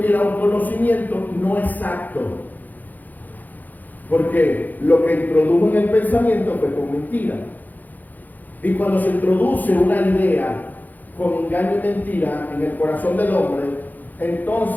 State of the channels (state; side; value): late; right; 0.083 ms